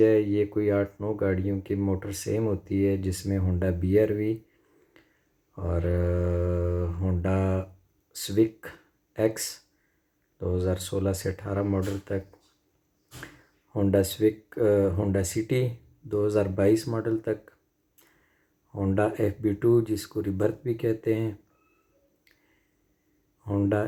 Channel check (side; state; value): both; identical; correlation 1.00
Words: है। ये कोई 8-9 गाड़ियों की मोटर सेम होती है, जिसमें होंडा BRV और होंडा स्विक एक्स 2016 से 18 मॉडल तक, Honda Civic Honda City 2022 model तक, होंडा FB2 जिसको रिबर्थ भी कहते हैं, Honda